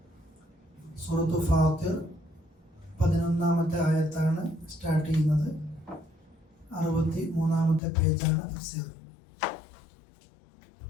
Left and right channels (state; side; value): drops out; right; at 7.8 s